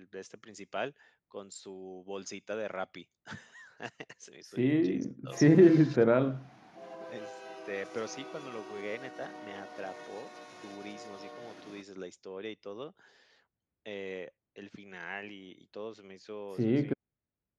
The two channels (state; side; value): identical; both; correlation 1.00